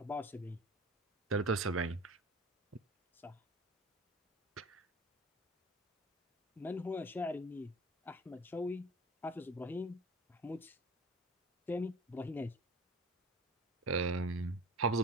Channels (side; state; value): both; normal; correlation 0.40